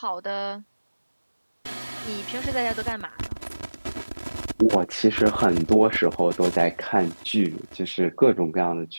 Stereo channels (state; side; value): inverted; both; correlation -1.00